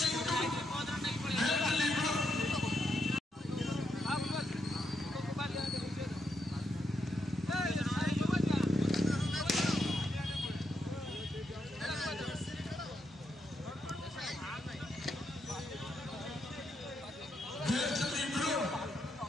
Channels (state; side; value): normal; both; correlation 0.81